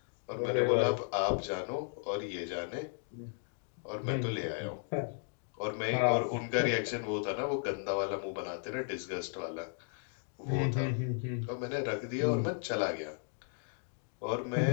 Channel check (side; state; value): right; silent; 54 dB below the other